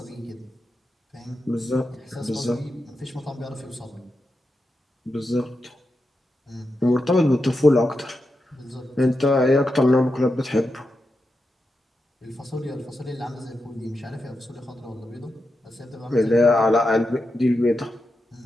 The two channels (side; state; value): both; normal; correlation 0.88